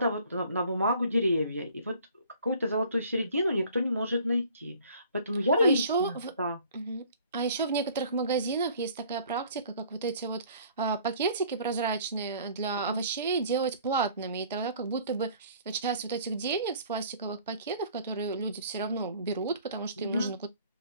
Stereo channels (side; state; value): both; inverted; correlation -0.52